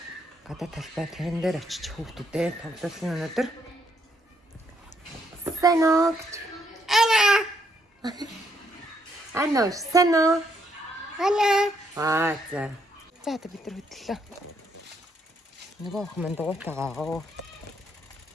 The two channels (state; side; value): normal; both; correlation 0.74